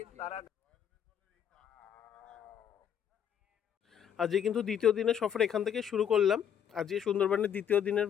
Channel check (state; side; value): quieter; right; 8.9 dB